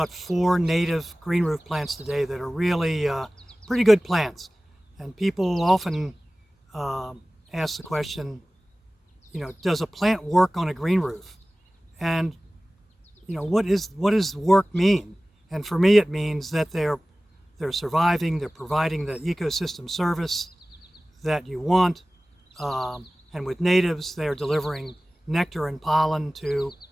4 native green roof plants today that are really pretty good plants. And people often ask the question, does a plant work on a green roof? And what does work mean? And for me, it means that they're surviving, they're providing the ecosystem service that you want. And with natives, they're delivering nectar and pollen to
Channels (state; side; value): normal; both; correlation 0.97